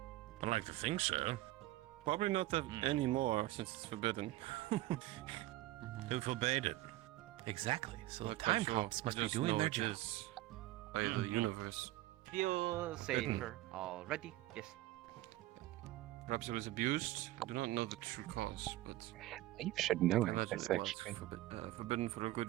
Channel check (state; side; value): quieter; left; 16.8 dB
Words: I like to think so. Probably not that anymore since it's forbidden. Who forbade it? Exactly. So Not the quite time sure. cops must I be just doing know their it job. is by the universe. Feel Forbidden. safer already? Yes. Perhaps it was abused. I do not know the true cause, but You should know I it. imagine That's it was actually forbidden for a good